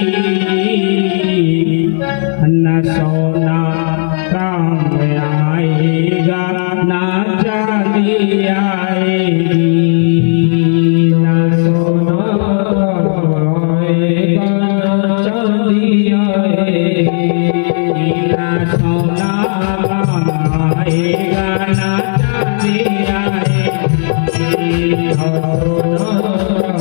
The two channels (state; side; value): silent; right; digital silence